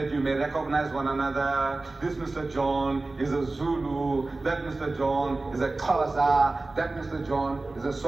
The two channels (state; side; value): quieter; left; 3.2 dB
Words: you may recognize one another. This Mr. John is a Zulu, that Mr. John is a Xhosa, that Mr. John is a